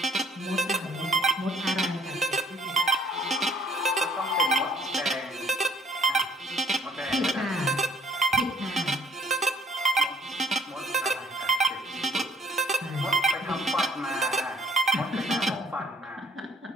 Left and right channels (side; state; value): both; normal; correlation 0.61